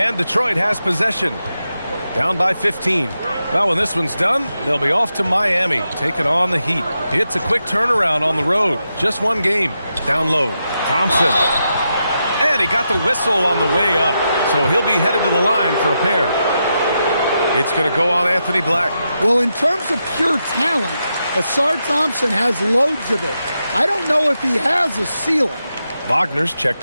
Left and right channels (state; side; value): inverted; both; correlation -0.86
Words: Detroit has possession. Down by 15. Well, when this one's done, they'll be off to Miami, taking on the Heat. It's a quick turnaround on the road. Just one game. Down low. Thompson. And he got the whistle on the way up. So he'll be headed to the line for a pair. It's going to go on Anthony Black. Well, in terms of pure talent, Asar Thompson has loads of it. I don't know if he has a ceiling. Wagner's